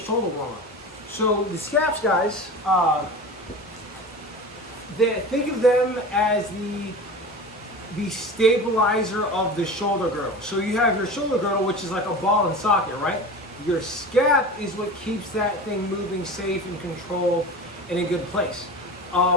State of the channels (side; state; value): both; normal; correlation 0.33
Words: warm-up. So the scaps, guys, think of them as the stabilizer of the shoulder girdle. So you have your shoulder girdle, which is like a ball and socket, right? Your scap is what keeps that thing moving safe and controlled in a good place.